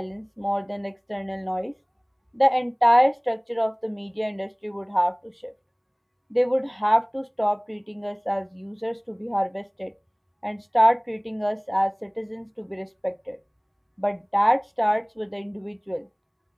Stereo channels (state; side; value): identical; both; correlation 1.00